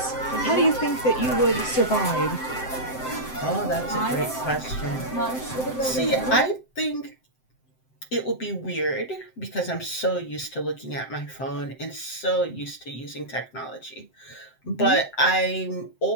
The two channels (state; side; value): late; right; 7.7 ms